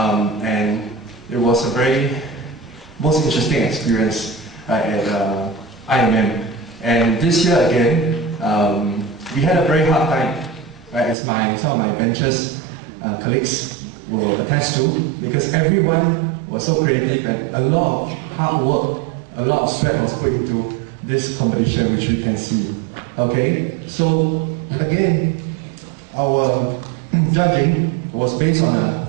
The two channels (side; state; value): left; drops out; at 11.2 s